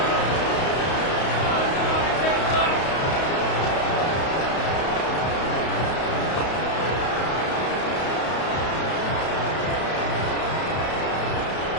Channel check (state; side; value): late; right; 32 ms